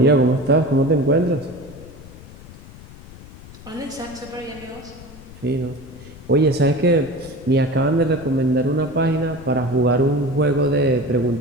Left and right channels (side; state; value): left; noise; rumble, 18 dB below the sound